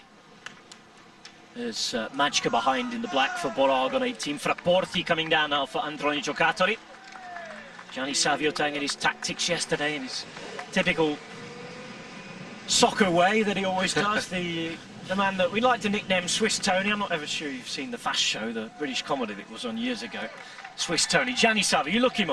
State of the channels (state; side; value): identical; both; correlation 1.00